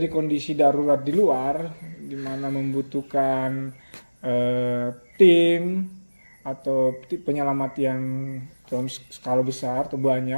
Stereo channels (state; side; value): inverted; both; correlation -1.00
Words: kondisi darurat di luar, di mana membutuhkan tim atau penyelamat yang dalam skala besar atau